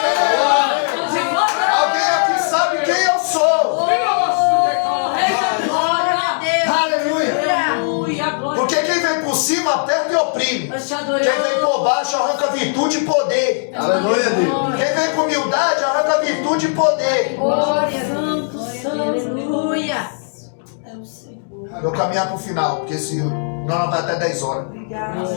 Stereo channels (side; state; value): right; silent; digital silence